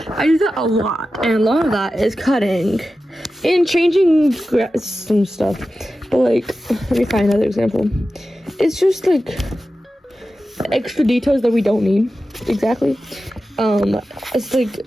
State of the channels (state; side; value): normal; both; correlation 0.93